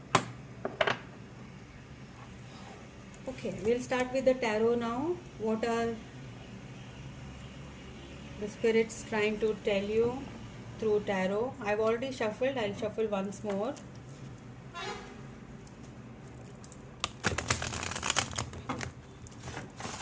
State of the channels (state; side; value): identical; both; correlation 1.00